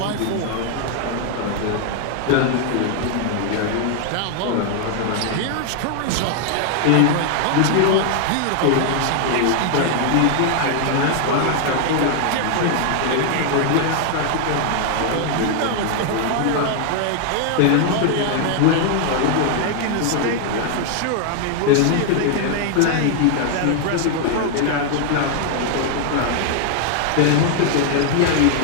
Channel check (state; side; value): different; both; correlation 0.00